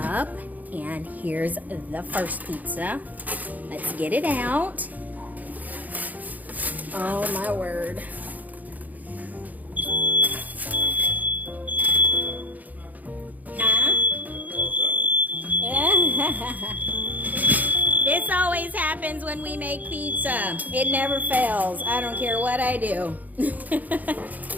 And here's the first pizza. Let's get it out. Oh my word. Huh? This always happens when we make pizza. It never fails. I don't care what I do.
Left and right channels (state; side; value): late; left; 0.080 ms